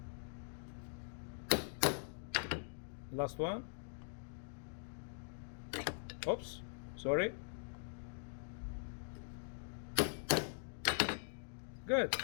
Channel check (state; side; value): silent; right; digital silence